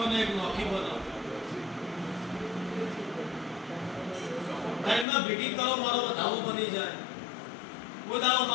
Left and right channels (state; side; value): drops out; right; at 5.1 s